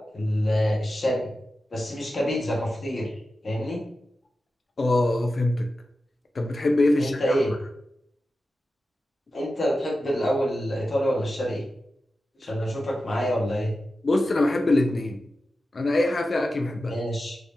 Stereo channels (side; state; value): both; normal; correlation 0.92